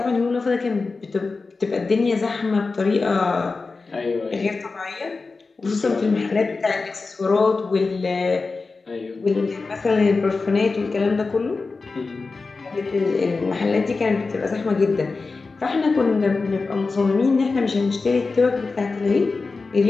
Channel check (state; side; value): quieter; right; 4.1 dB